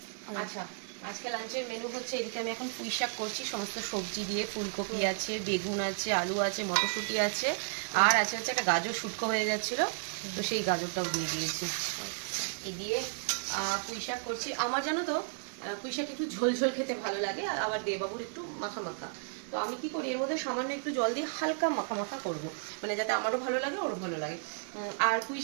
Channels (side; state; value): left; silent; digital silence